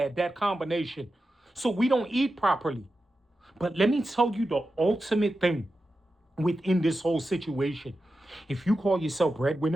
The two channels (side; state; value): both; normal; correlation 0.91